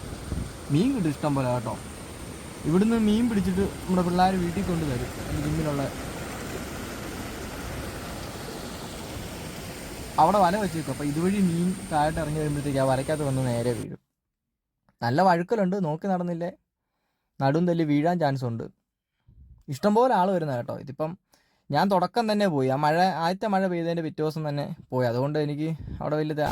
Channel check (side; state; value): both; identical; correlation 1.00